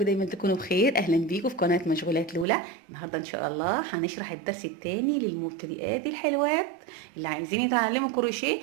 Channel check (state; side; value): drops out; left; at 2.5 s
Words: تكونوا بخير. اهلا بيكم في قناة مشغولات لولا. النهاردة ان شاء الله هنشرح الدرس التاني للمبتدئات الحلوات اللي عايزين يتعلموا كروشيه.